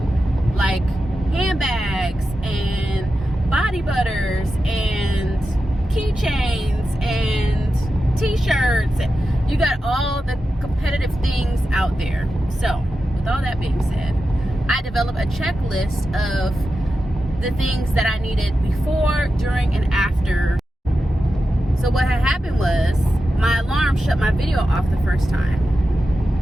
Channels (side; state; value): both; normal; correlation 0.91